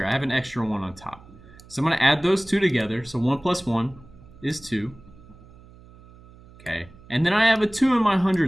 I have an extra 1 on top. So I'm gonna add those two together, so 1 plus 1 is 2. Okay, and then I have a 2 in my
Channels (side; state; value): right; noise; hum, 22 dB below the sound